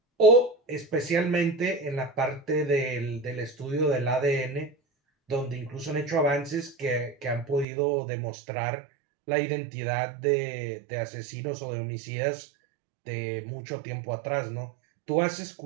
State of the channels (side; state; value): left; drops out; at 7.7 s